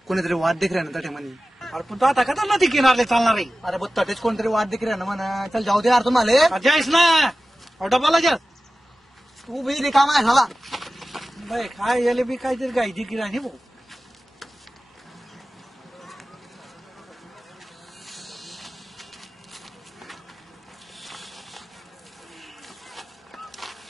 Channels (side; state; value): both; normal; correlation 0.96